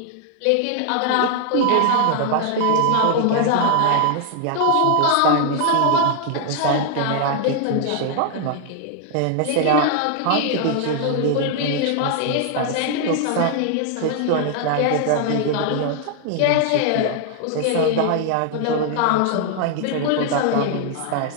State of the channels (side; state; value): both; different; correlation 0.00